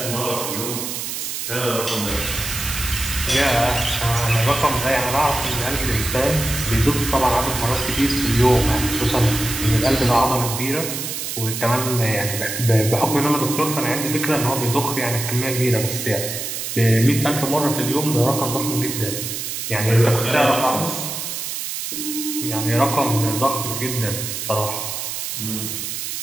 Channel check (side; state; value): right; noise; hiss, 5 dB below the sound